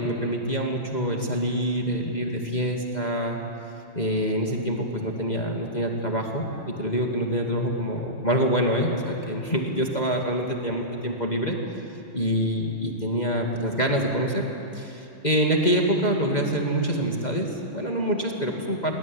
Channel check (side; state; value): right; late; 2.0 ms